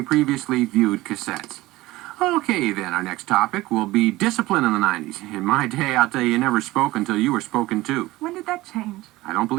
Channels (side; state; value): left; quieter; 18.5 dB